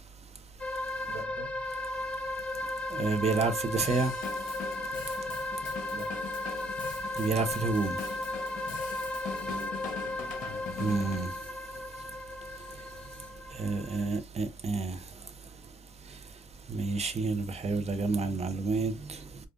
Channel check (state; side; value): normal; both; correlation 0.68